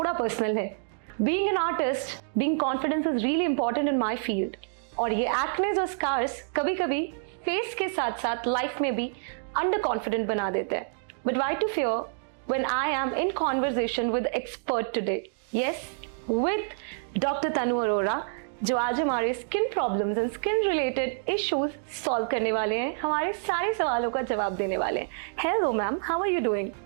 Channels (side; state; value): left; silent; digital silence